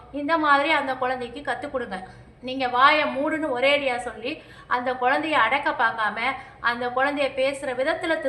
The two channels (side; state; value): both; identical; correlation 1.00